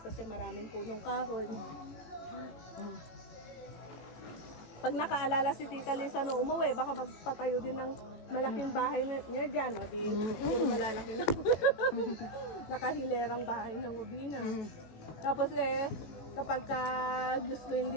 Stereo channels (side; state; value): right; late; 18 ms